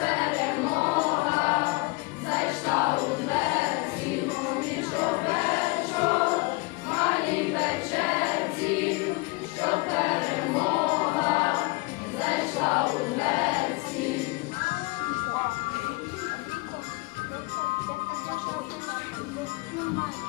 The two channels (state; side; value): quieter; right; 25.7 dB